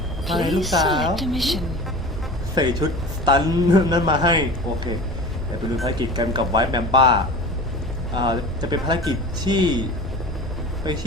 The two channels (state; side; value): normal; both; correlation 0.36